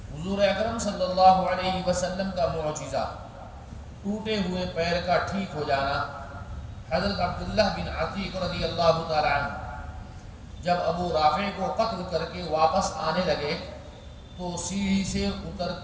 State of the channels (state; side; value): identical; both; correlation 1.00